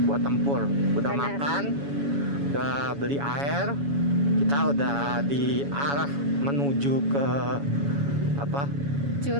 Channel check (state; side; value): late; left; 7.1 ms